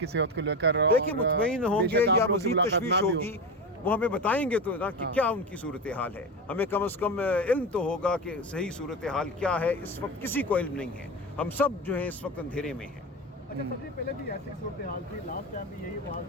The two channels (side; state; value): both; normal; correlation 0.21